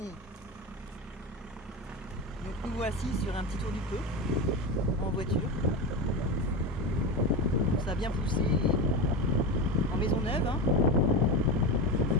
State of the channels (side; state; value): both; normal; correlation 0.21